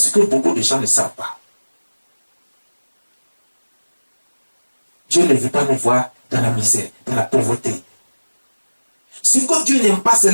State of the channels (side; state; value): both; inverted; correlation -1.00